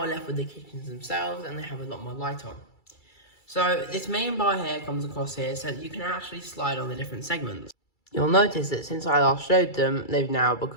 left with the kitchens themselves, and they have a lot more light on. So this main bar here comes across here so that you can actually slide on the different segments. You'll notice that since I last showed them, they've now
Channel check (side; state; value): right; late; 2.3 ms